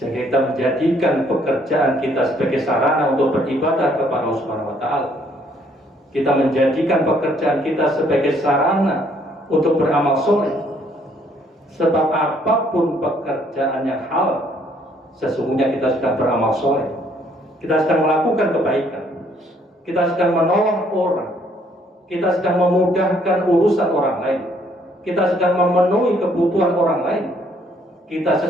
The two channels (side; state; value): both; normal; correlation 0.65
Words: kita menjadikan pekerjaan kita sebagai sarana untuk beribadah kepada Allah Subhanahu wa Ta'ala. Kita menjadikan pekerjaan kita sebagai sarana untuk beramal soleh. Sebab apapun pekerjaan yang halal, sesungguhnya kita sedang beramal soleh. Kita sedang melakukan kebaikan. Kita sedang menolong orang. Kita sedang memudahkan urusan orang lain. Kita sedang memenuhi kebutuhan orang lain. Kita